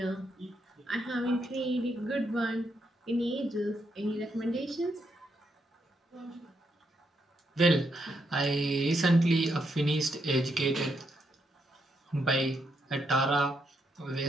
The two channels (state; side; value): normal; both; correlation 0.79